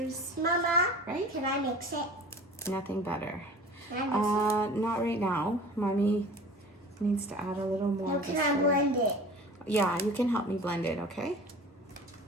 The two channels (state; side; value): normal; both; correlation 0.41